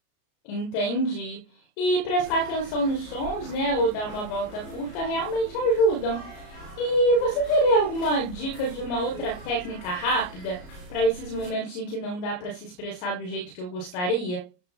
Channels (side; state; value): right; late; 33 ms